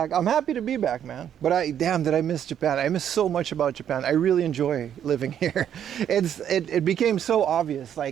I'm happy to be back, man. But damn, did I miss Japan? I miss so much about Japan. I really enjoy living here. It became so obvious,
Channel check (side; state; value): left; quieter; 9.6 dB